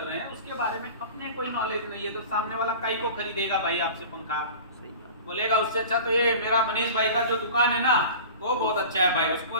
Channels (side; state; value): both; inverted; correlation -0.38